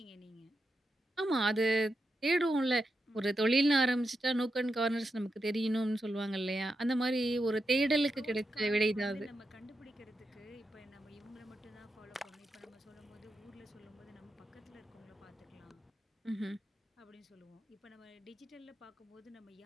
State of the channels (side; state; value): both; normal; correlation 0.87